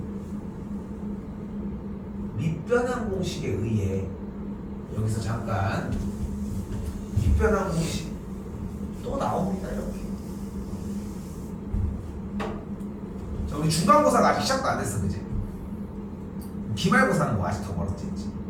밑변환 공식에 의해 여기서 잠깐 밑변환 공식 또 나옵니다. 이렇게. 자, 우리 중간고사가 아직 시작도 안 됐어, 그지? 기말고사는 뭐 아직 더 멀었지, 그치?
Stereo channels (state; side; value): identical; both; correlation 1.00